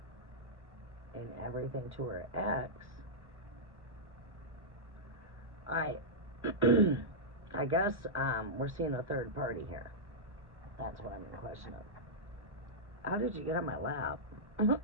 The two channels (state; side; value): late; left; 1.0 ms